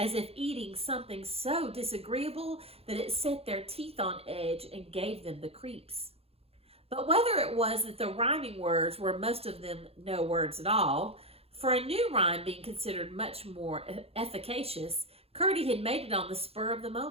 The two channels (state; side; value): late; left; 0.29 ms